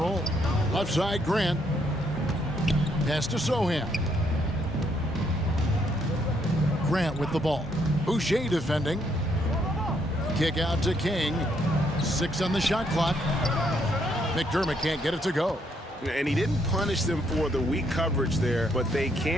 Left side, Grant. Pass to Sohan. Grant with the ball. Boucher defending. Kick out to King. 6 on the shot clock. McDermott can't get it to go. And he didn't punish them for the weak coverage there, but they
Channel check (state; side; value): normal; both; correlation 0.72